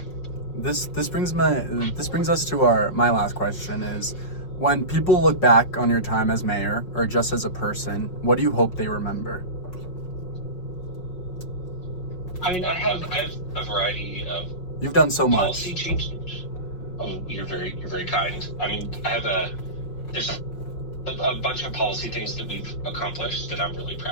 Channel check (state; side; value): late; right; 5.5 ms